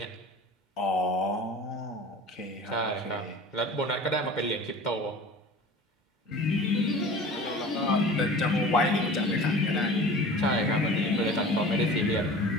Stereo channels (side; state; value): both; normal; correlation 0.40